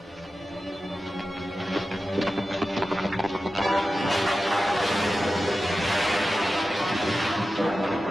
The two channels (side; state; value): both; normal; correlation 0.93